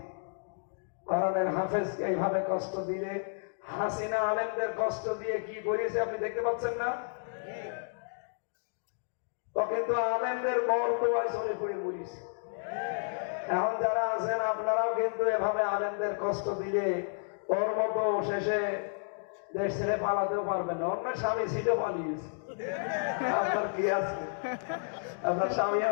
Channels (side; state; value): right; silent; digital silence